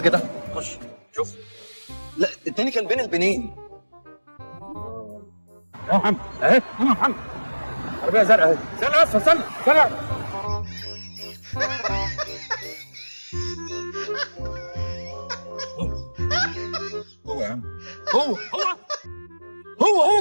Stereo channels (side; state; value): both; inverted; correlation -1.00